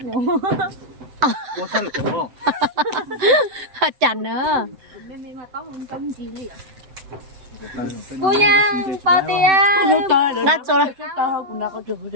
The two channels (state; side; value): late; left; 7.8 ms